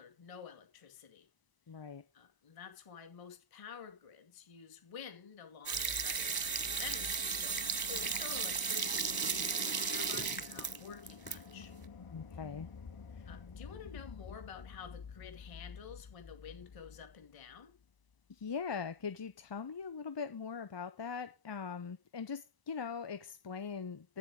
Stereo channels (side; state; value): right; late; 1.0 ms